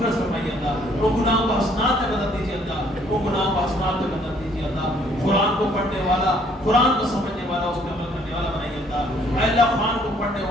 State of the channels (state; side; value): normal; both; correlation 0.63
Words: فرمائیے اللہ، ان گناہوں کو حسنات میں بدل دیجیے اللہ، ان گناہوں کو حسنات میں بدل دیجیے اللہ، قرآن کو پڑھنے والا، قرآن کو سمجھنے والا، اس پہ عمل کرنے والا بنائیے اللہ۔ اے اللہ، قرآن کو پڑھنے پڑھنے